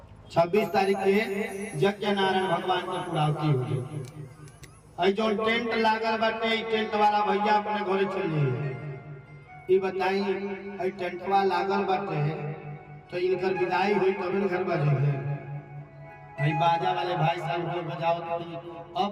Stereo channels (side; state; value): both; identical; correlation 1.00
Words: 26 तारीख के यज्ञ नारायण भगवान की पूर्णाहुति हो जाए। जो टेंट लागल बाटे, टेंट वाला भैया अपने घरे चल जाइए। ये बताई टेंटवा लागल बाटे तो इनकर विदाई हुई तब घर बजे। बाजा वाले भाई साहब को बजाओ तो